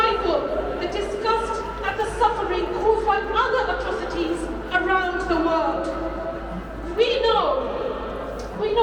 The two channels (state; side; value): identical; both; correlation 1.00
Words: the disgust at the suffering caused by other atrocities around the world? We